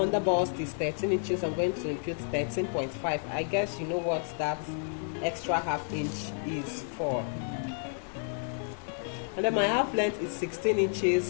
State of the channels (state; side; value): silent; right; 57 dB below the other